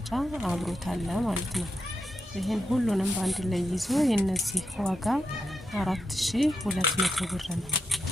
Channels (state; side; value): normal; both; correlation 0.86